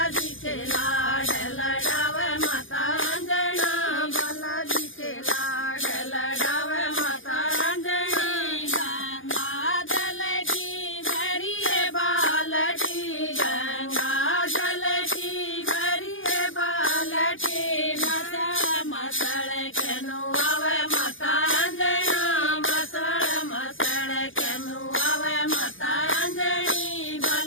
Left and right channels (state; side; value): late; right; 0.58 ms